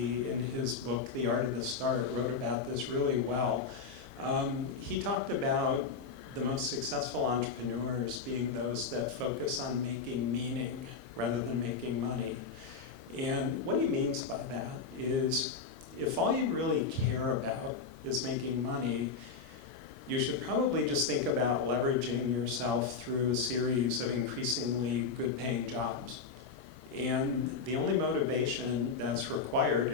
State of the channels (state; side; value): quieter; right; 5.0 dB